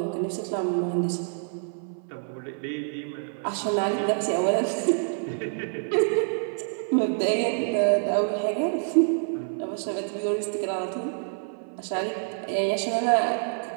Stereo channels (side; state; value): left; silent; 58 dB below the other